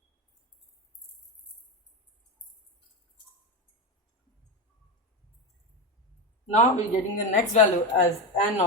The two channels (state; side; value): normal; both; correlation 0.15